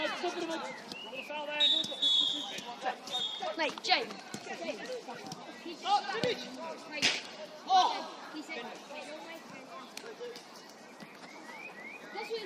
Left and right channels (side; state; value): both; identical; correlation 1.00